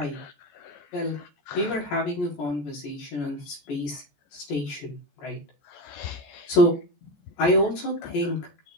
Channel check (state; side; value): late; right; 14 ms